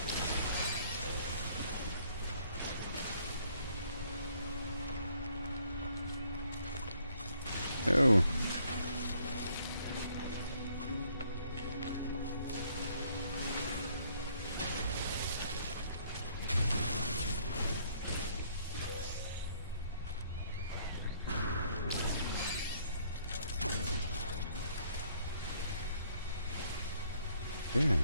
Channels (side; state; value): both; inverted; correlation -0.65